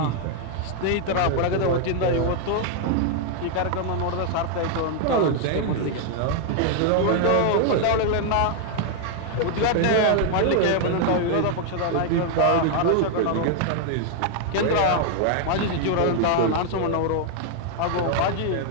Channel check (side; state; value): both; different; correlation 0.00